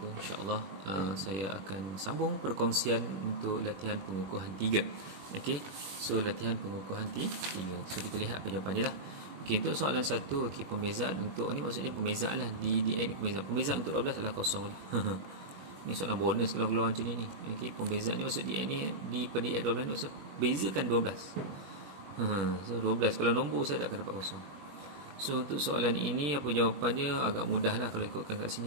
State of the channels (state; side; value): late; left; 21 ms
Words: InsyaAllah saya akan sambung perkongsian untuk latihan pengukuhan 3. Okey. So latihan pengukuhan 3. So kita lihat apa jawapan dia lah. Okey, untuk soalan 1, okey, pembezaan untuk ni maksudnya pembezaan lah di ni pembezaan untuk 12 adalah kosong lah. Ni soalan bonus kalau keluar macam ni. Okey, pembezaan ni maksud DN ni di per DN 12 maksud bezakan 12. So 12 kalau nombor saya tak akan dapat kosong. So untuk soalan ini apa jawapannya agak mudah lah kalau ikutkan kat